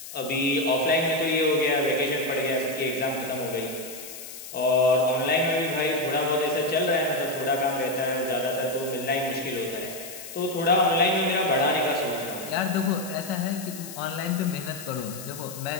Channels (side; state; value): left; noise; hiss, 12 dB below the sound